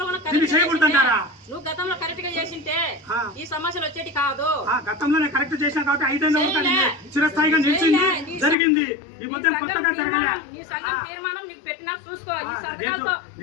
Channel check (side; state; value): right; drops out; at 8.6 s